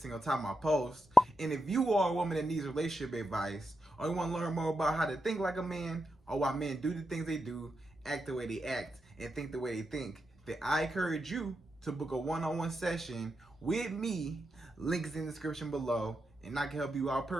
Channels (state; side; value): normal; both; correlation 0.87